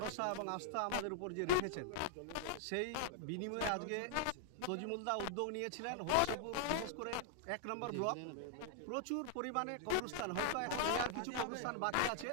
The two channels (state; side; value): different; both; correlation -0.01